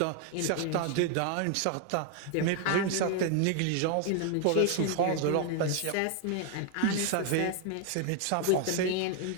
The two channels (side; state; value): both; different; correlation 0.00